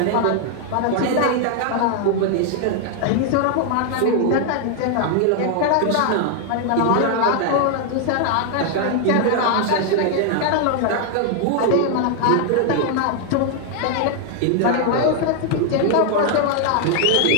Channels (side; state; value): both; different; correlation 0.00